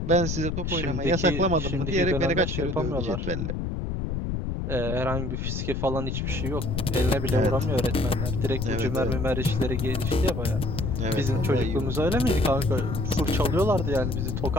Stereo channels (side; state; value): left; noise; rumble, 2 dB below the sound